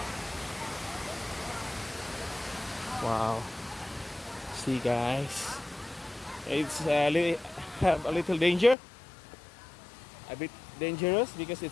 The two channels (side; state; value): right; drops out; at 8.8 s